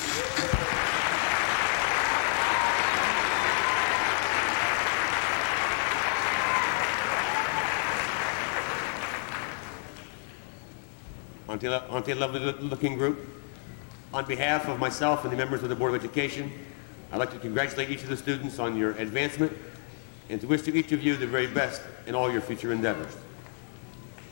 Aren't they a lovely-looking group? On behalf of myself and the members of the Board of Education, I'd like to congratulate each of the students on your advancement and to wish to each of you the very best in all your future endeavors.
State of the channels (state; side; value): silent; right; 58 dB below the other